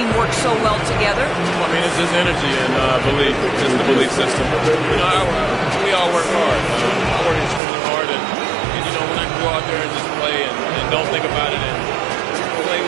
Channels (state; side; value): drops out; left; at 7.6 s